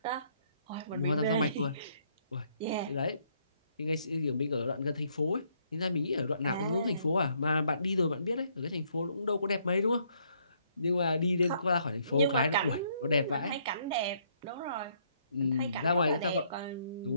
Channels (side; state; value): both; inverted; correlation -0.69